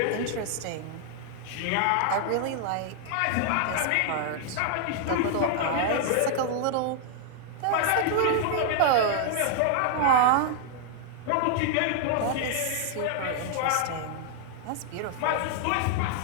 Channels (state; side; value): different; both; correlation 0.00